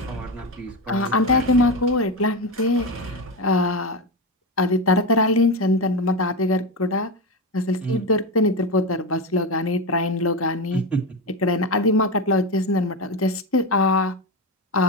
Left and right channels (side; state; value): both; normal; correlation 0.16